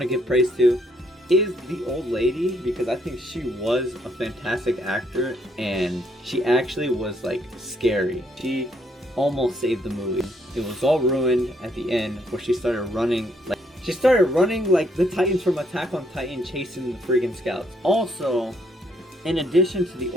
to give praise to is the old lady, because I think she was a fantastic actor, and she actually was like scary. She almost saved the movie. It was all ruined at the end where she started running like the Titans from Attack on Titan chasing the friggin' scouts. Also, in addition to the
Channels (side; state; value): both; normal; correlation 0.70